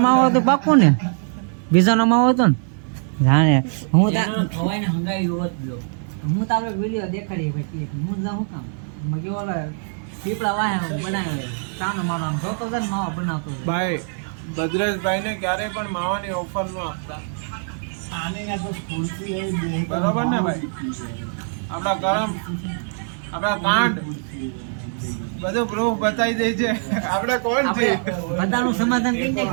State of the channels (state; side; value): silent; left; digital silence